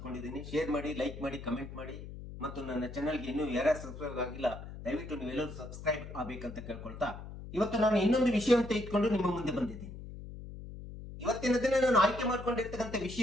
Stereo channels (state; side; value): noise; left; hum, 11 dB below the sound